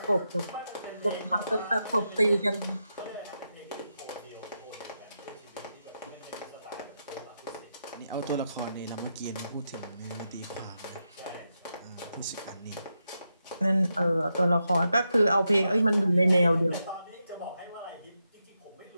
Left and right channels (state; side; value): inverted; both; correlation -0.86